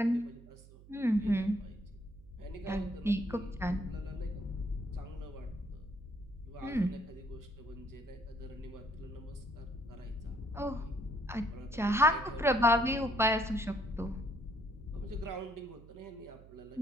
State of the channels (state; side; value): noise; right; hum, 20 dB below the sound